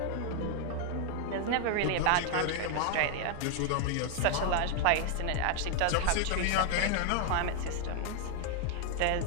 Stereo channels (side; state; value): both; different; correlation 0.00